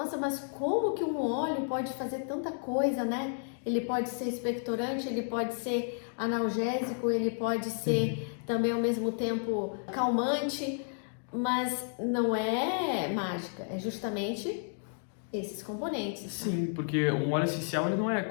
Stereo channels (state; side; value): silent; right; digital silence